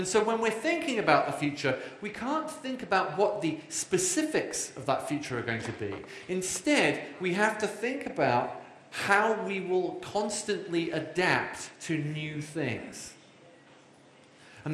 so when we're thinking about the future, we can't think about what the specifics of that future are going to be. Instead, we have to think about how we will constantly adapt to new things.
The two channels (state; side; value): identical; both; correlation 1.00